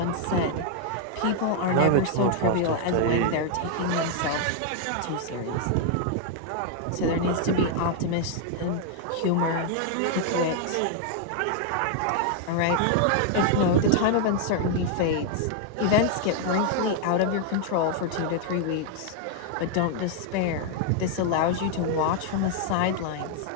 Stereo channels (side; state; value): both; different; correlation 0.00